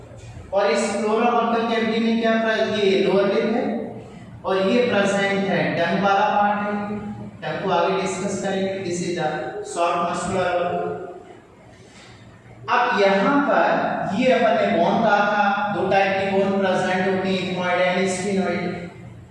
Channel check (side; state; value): both; identical; correlation 1.00